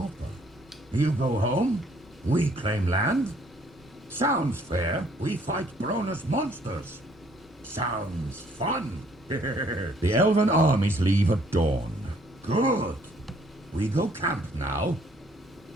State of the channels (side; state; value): both; normal; correlation 0.63